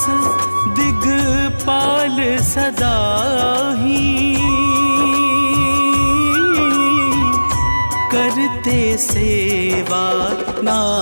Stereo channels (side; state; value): both; inverted; correlation -1.00